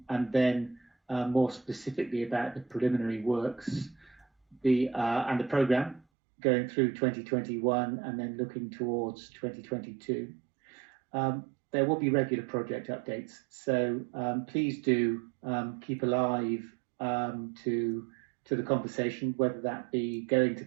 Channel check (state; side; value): drops out; left; at 6.1 s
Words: then more specifically about the preliminary works, and the programme going through 2021 and then looking towards 2022. There will be regular project updates, so please do keep alive to the conversation, whether that be going to